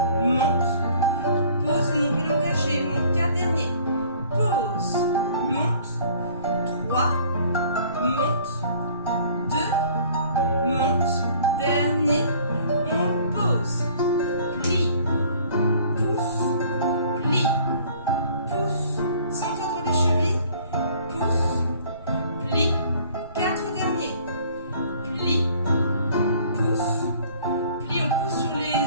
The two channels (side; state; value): both; inverted; correlation -0.54